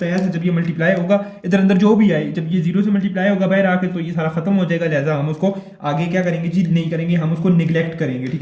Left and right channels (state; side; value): identical; both; correlation 1.00